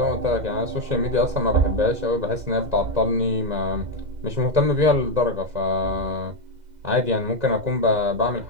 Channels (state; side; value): late; left; 2.0 ms